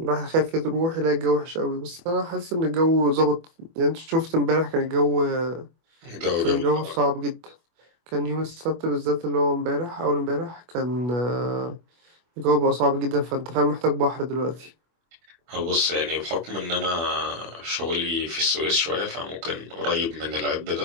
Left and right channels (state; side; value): late; left; 24 ms